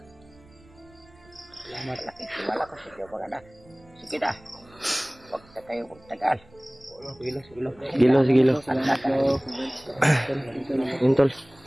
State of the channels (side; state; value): right; noise; rumble, 27 dB below the sound